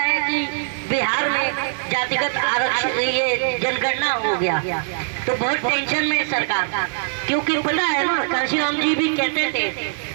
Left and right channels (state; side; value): silent; left; digital silence